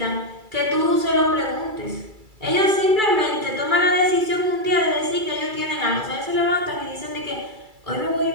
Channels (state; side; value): late; left; 2.3 ms